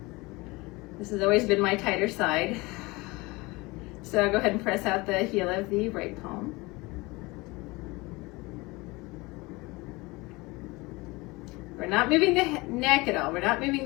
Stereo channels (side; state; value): right; quieter; 23.5 dB